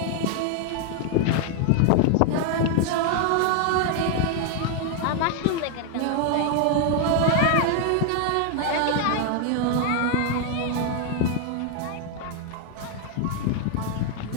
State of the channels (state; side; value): different; both; correlation 0.00